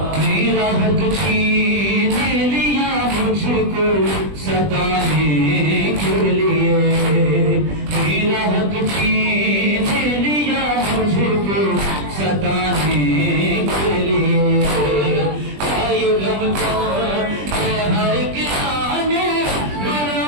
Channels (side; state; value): left; late; 20 ms